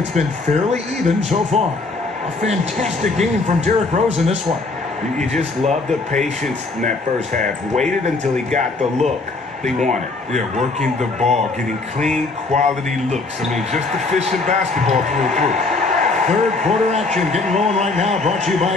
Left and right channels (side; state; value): right; quieter; 3.6 dB